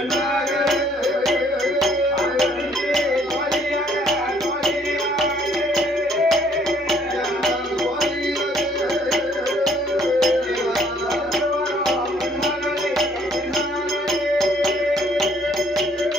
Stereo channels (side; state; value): both; normal; correlation 0.63